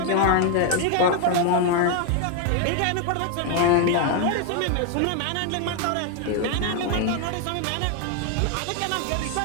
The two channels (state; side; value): different; both; correlation 0.01